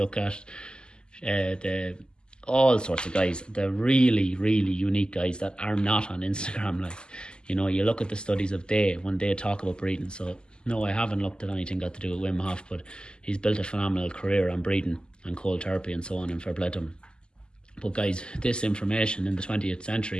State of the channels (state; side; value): late; right; 0.048 ms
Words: at all sorts of guys, the really, really unique guys that are not on Instagram. Like, you look at the studies of when they talk about breathing. So no, I haven't looked at anything got to do with Wim Hof, but he's built a phenomenal career on breathing and cold therapy and so on, and fair play to him. But guys, this information in the 20th